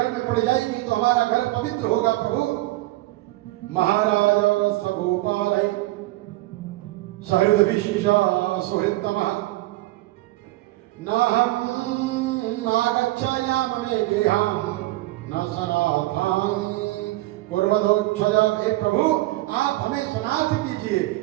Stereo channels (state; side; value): quieter; left; 18.6 dB